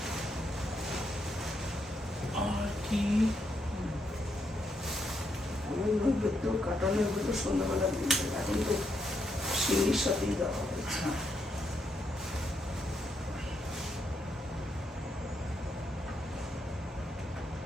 আর কি? আমার নৈবেদ্য কাটা নৈবেদ্য সন্ধ্যাবেলা দিয়ে দেবে, এখন তো শিঙির সাথেই দেওয়া হয়েছে। হ্যাঁ।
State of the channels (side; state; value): both; normal; correlation 0.79